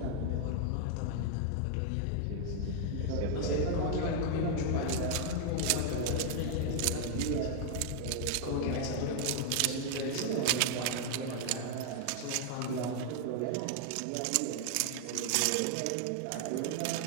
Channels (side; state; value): both; different; correlation 0.00